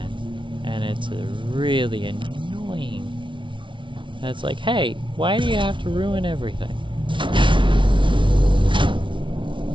And it's really annoying. And it's like, hey, why do you have to ruin everything?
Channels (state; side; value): late; left; 0.24 ms